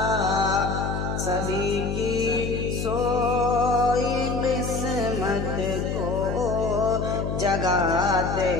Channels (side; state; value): left; noise; hum, 2 dB below the sound